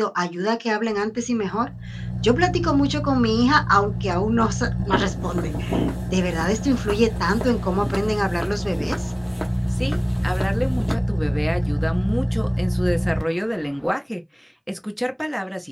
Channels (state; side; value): identical; both; correlation 1.00